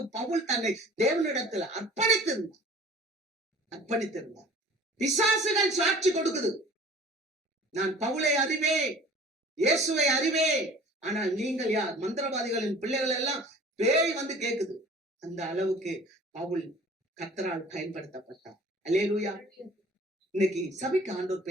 பவுல் தன்னை தேவனிடத்துல அர்ப்பணித்திருந்தார். பிசாசுகள் சாட்சி கொடுக்குது, நான் பவுலை அறிவேன், இயேசுவை அறிவேன், ஆனால் நீங்கள் யார்? மந்திரவாதிகளின் பிள்ளைகள் எல்லாம் பேய் வந்து கேக்குது. அந்த அளவுக்கு பவுல் கர்த்தரால் பயன்படுத்தப்பட்டார். அல்லேலூயா. இன்னைக்கு சபைக்கு ஆண்டவர்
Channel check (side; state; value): both; normal; correlation 0.47